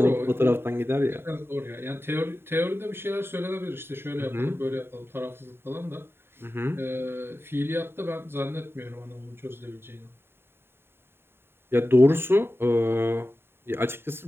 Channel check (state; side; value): late; left; 0.11 ms